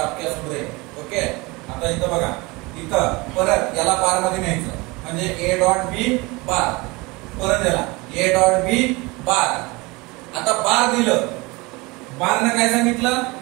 आप क्या सुन रहे. ओके. आता इथं बघा, इथं परत याला बार मध्ये न्यायचं, म्हणजे a डॉट बी बार, परत याला a डॉट बी बार. आता बार दिलं, बारनं काय सांगितलं,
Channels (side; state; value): left; quieter; 24.5 dB